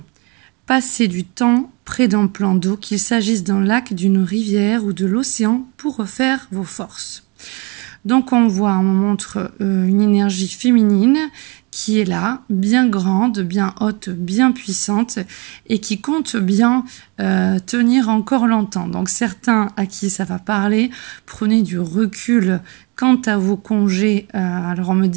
Passez du temps près d'un plan d'eau, qu'il s'agisse d'un lac, d'une rivière ou de l'océan, pour refaire vos forces. Donc on voit, on me montre une énergie féminine qui est là, bien grande, bien haute, bien puissante et qui compte bien tenir encore longtemps. Donc certains à qui ça va parler, prenez du recul quant à vos congés. Alors on me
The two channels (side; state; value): left; quieter; 29.8 dB